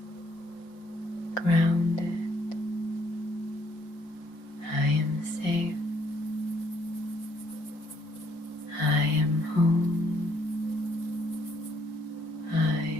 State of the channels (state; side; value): late; right; 5.6 ms